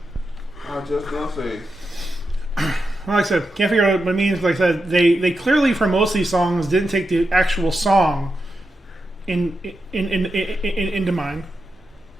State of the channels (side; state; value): both; normal; correlation 0.88